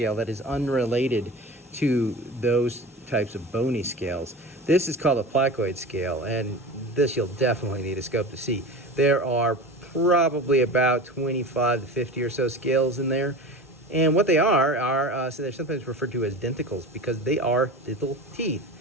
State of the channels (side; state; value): both; normal; correlation 0.32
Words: that is unrelated to those types of bony scales. This is called a placoid scale, and this you'll definitely need a scope to see. There are probably about 25 to 50 or so scales in there, and what they are so they're sometimes referred to as denticles because they are little teeth